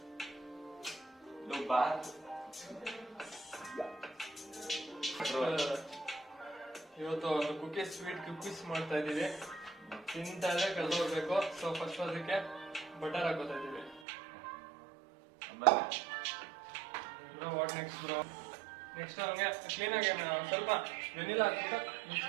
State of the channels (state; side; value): drops out; left; at 14.0 s